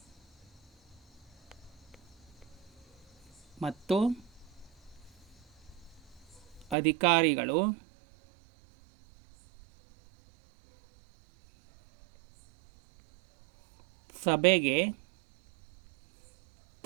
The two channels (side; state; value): left; drops out; at 6.8 s